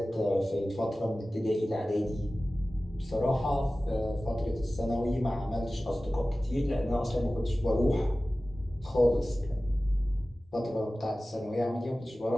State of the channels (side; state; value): both; normal; correlation 0.96